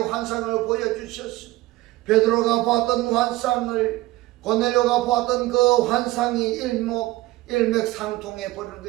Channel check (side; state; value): left; quieter; 18.5 dB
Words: 보여주셨습니다. 베드로가 보았던 환상을 고넬료가 보았던 그 환상이 일맥상통해 버리는